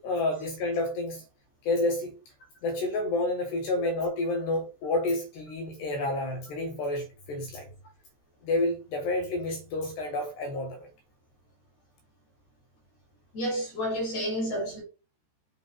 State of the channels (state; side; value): late; right; 14 ms